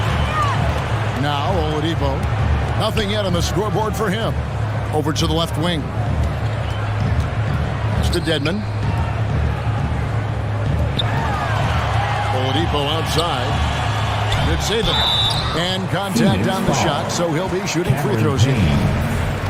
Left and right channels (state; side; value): identical; both; correlation 1.00